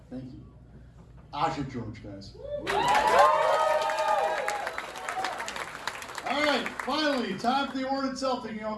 Thank you. Ajay George, guys. All right, finally, time for the award itself. You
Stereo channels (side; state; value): both; identical; correlation 1.00